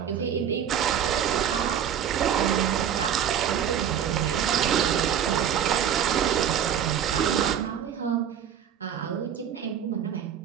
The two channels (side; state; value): left; quieter; 9.1 dB